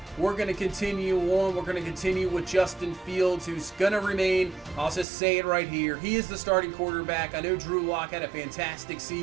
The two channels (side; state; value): left; drops out; at 5.1 s